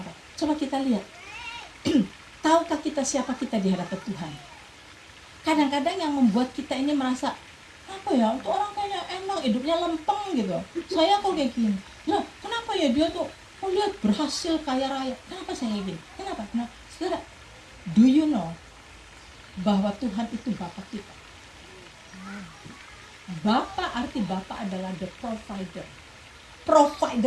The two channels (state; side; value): identical; both; correlation 1.00